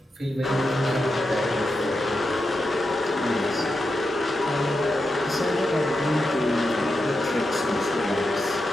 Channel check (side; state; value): both; normal; correlation 0.88